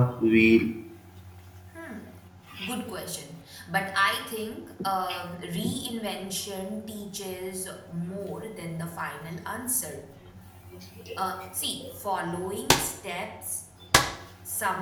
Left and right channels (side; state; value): both; identical; correlation 1.00